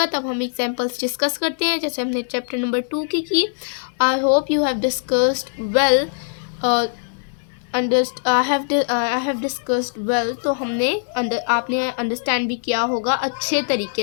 तब हम एग्जांपल्स डिस्कस करते हैं, जैसे हमने चैप्टर नंबर 2 की। I hope you have discussed well, I have discussed well. तो आपने अंडरस्टैंड भी किया होगा अच्छे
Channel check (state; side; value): silent; right; digital silence